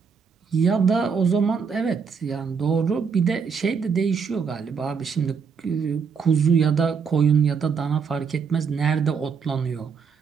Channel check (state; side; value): quieter; left; 6.0 dB